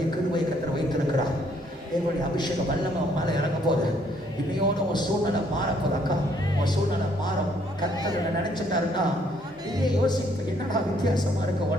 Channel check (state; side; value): normal; both; correlation 0.66